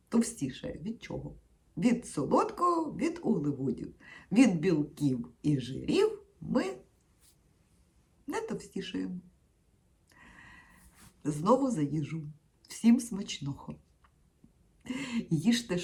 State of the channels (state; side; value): identical; both; correlation 1.00